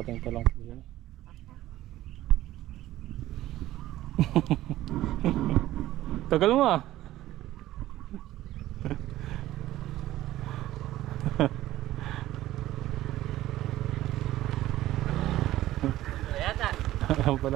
palang po siya. Tagal mo ah. Yata. Alam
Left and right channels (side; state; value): left; quieter; 15.0 dB